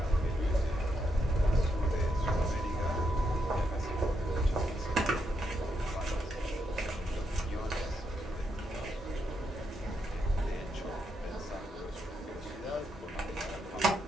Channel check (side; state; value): both; normal; correlation 0.81